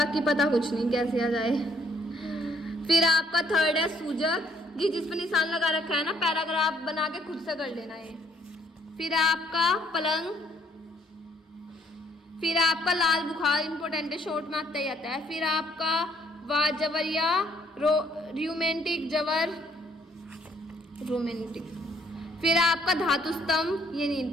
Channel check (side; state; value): both; normal; correlation 0.66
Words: पता कुछ नहीं कैसे आ जाए। फिर आपका थर्ड है सूजक, ये जिस पर निशान लगा रखा है ना, पैराग्राफ बना के खुद से कर लेना है। फिर आपका पलंग, फिर आपका लाल बुखार, इंपॉर्टेंट है, शॉर्ट में आता ही आता है। फिर आपका वाजवरिया रोमेंटिक जवर, रोमेंटिक। फिर आपका धातु स्तंभ, ये नहीं